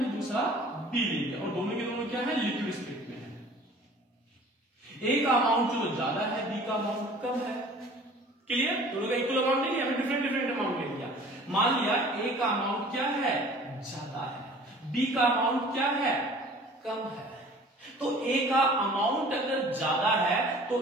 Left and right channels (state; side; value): normal; both; correlation 0.48